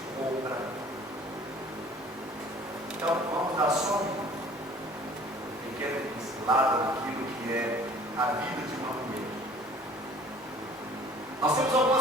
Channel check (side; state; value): both; normal; correlation 0.51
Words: compra. Então, vamos dar só uma pequena pincelada naquilo que é a vida de uma mulher. Nós temos